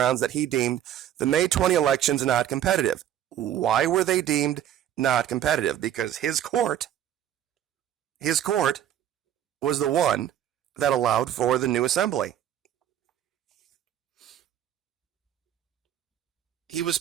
that he deemed the May 20 elections not competitive. Why were they deemed not competitive? Because his court was the one that allowed for the new assembly. He was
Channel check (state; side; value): quieter; left; 11.0 dB